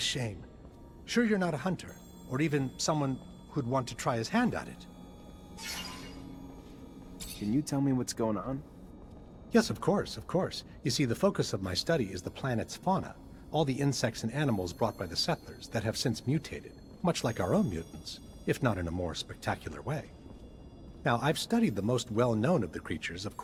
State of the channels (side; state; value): both; identical; correlation 1.00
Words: Sure you're not a hunter, or even someone who'd want to try his hand at it? Can you tell me what's going on? Yes, of course, of course. You see, the focus of my study is the planet's fauna, all the insects and animals brought by the settlers that have since mutated, much like our own mutants, if not in a more spectacular way. Now, I've studied the most well-known of the creatures, of